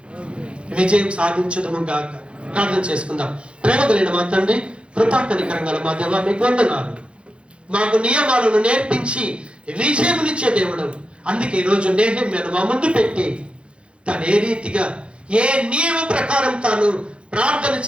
విజయం సాధించదుము గాక. ప్రార్థన చేసుకుందాం. ప్రేమ కలిగిన మా తండ్రి, కృపా కనికరంగా మా దేవా, మీకు వందనాలు. మాకు నియమాలను నేర్పించి విజయమునిచ్చే దేవుడు. అందుకే ఈరోజు నెహెమ్యాను మా ముందు పెట్టి తను ఏ రీతిగా ఏ నియమ ప్రకారం తాను ప్రార్థన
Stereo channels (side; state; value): left; late; 0.058 ms